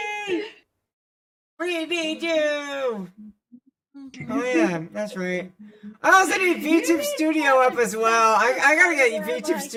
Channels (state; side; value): identical; both; correlation 1.00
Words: We need you! Oh yeah, that's right. I also need YouTube Studio up as well. I gotta get YouTube